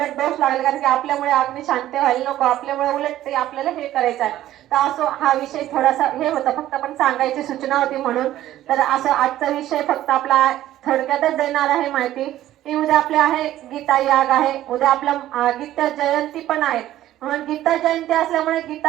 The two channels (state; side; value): quieter; left; 13.6 dB